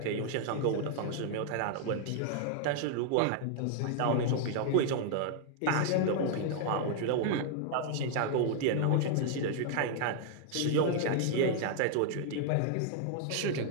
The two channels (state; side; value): different; both; correlation -0.01